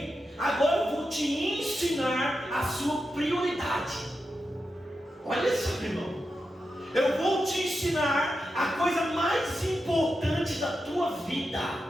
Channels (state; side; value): normal; both; correlation 0.88